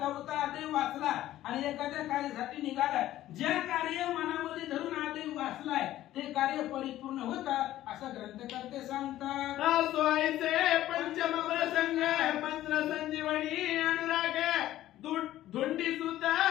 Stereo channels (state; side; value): quieter; right; 14.0 dB